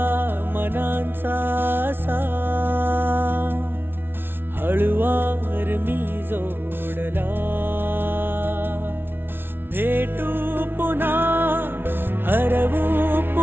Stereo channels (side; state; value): left; late; 0.11 ms